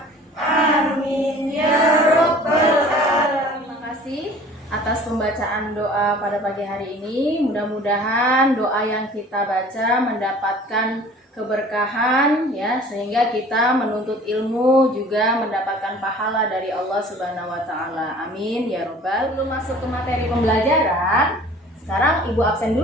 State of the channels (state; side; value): normal; both; correlation 0.47